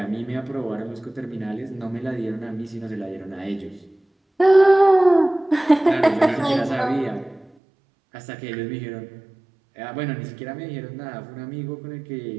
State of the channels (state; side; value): drops out; left; at 7.5 s